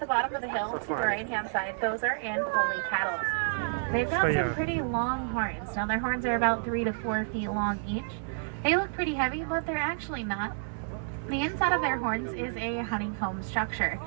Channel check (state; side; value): silent; left; 58 dB below the other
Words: bottom of the hill, to the right-hand side, those are Ankole cattle. They've got some pretty long horns. Now, their horns are about 3 to 4 feet long each. They look pretty heavy, but they're actually not. The inside of their horns is a honeycomb structure.